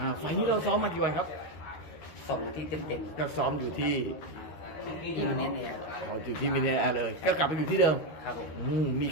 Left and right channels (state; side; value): late; right; 13 ms